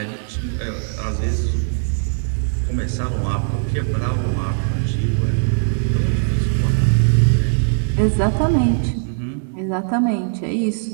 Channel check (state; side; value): silent; left; digital silence